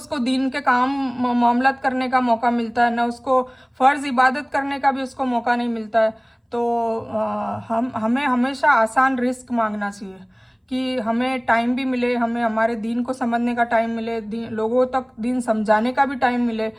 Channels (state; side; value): identical; both; correlation 1.00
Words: दीन के काम मामलात करने का मौका मिलता है, ना उसको फ़र्ज़ इबादत करने का भी उसको मौका नहीं मिलता है। तो हमें हमेशा आसान रिस्क मांगना चाहिए कि हमें टाइम भी मिले, हमें हमारे दीन को समझने का टाइम मिले, लोगों तक दीन समझाने का भी टाइम मिले,